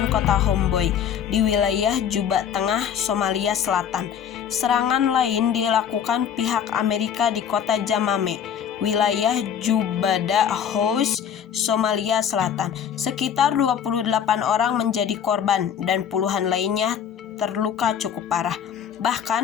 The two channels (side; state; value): right; quieter; 8.5 dB